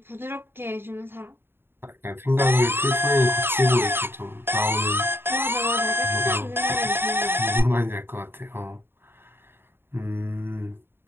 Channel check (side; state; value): left; late; 0.11 ms